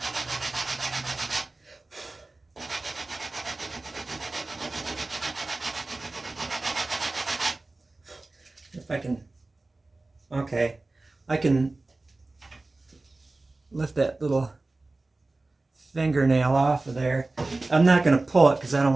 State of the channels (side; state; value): left; quieter; 3.2 dB